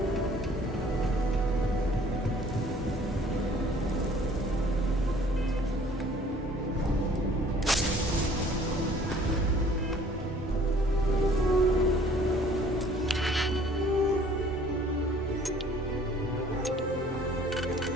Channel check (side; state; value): both; normal; correlation 0.54